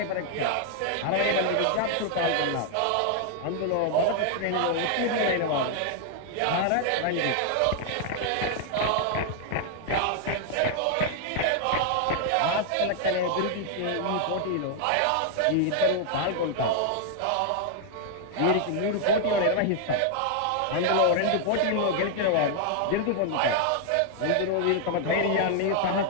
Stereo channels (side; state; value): both; different; correlation 0.00